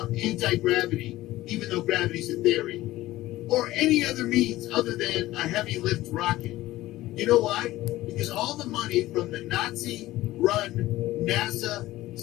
anti-gravity, even though gravity's a theory, or any other means other than a heavy lift rocket? You know why? Because all the money from the Nazi-run NASA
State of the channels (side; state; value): right; quieter; 16.5 dB